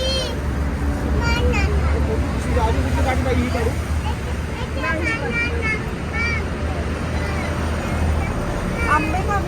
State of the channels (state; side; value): identical; both; correlation 1.00